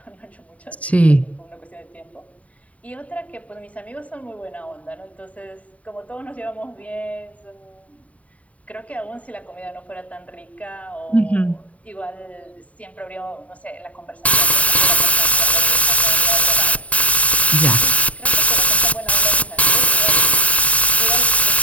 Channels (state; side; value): late; right; 0.068 ms